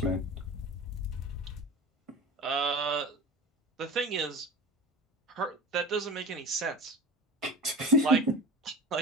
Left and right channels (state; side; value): normal; both; correlation 0.33